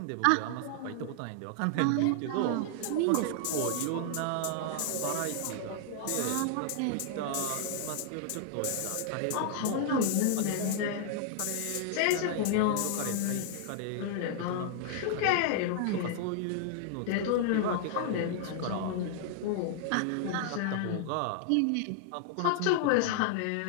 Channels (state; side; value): different; both; correlation 0.00